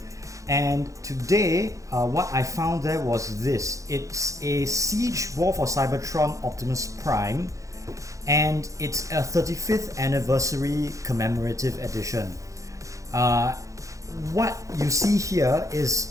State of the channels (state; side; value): late; left; 0.16 ms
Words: and today what I found there was this. It's a Siege War for Cybertron Optimus Prime, and it's a 35th anniversary commemorative edition. What you see here